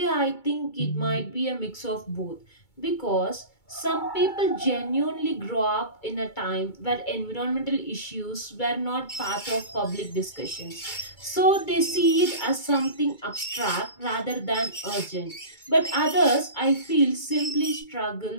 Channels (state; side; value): late; right; 2.3 ms